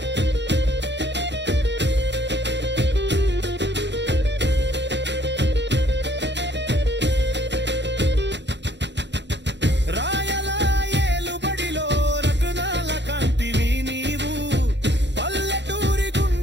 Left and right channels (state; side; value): late; left; 0.51 ms